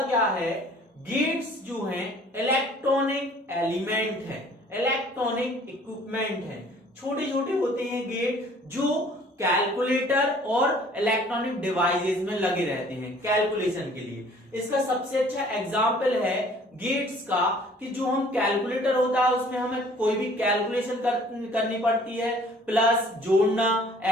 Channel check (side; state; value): both; normal; correlation 0.54